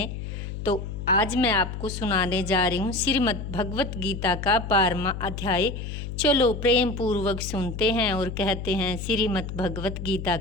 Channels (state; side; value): noise; left; hum, 7 dB below the sound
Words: तो आज मैं आपको सुनाने जा रही हूँ श्रीमद् भगवत गीता का 12वां अध्याय। चलो प्रेम पूर्वक सुनते हैं और कहते हैं श्रीमद् भगवत गीता